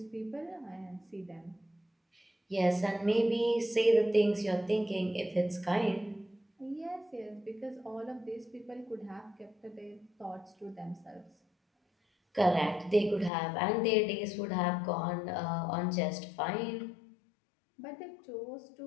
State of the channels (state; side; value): drops out; right; at 13.3 s